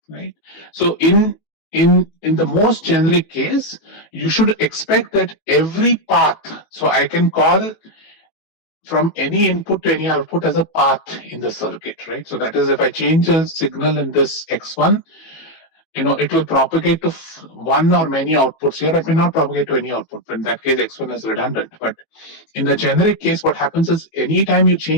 right? So in the most generic case, you should expect that every path, so I can call from any input to any output as a path in the circuit, right? So that is, if I change a signal in this x1, it will propagate to one or many outputs here. It may not propagate to any output. In that case, x1 is redundant. But in the generic case, what happens is anytime you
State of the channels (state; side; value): late; right; 18 ms